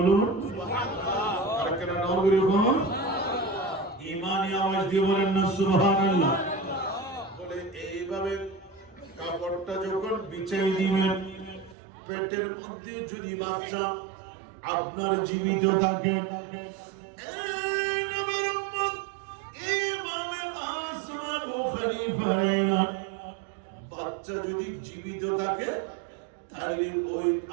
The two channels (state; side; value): drops out; left; at 11.8 s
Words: আর কেন নগরী বলুন, ইমানি আওয়াজ দিয়ে বলেন না সুবহানাল্লাহ। বলে এইভাবে কাপড়টা যখন বিছিয়ে দিবেন, পেটের মধ্যে যদি বাচ্চা আপনার জীবিত থাকে, বাচ্চা যদি জীবিত থাকে তাহলে ওই